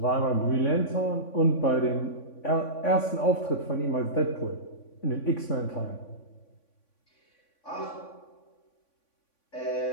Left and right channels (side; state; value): right; late; 3.5 ms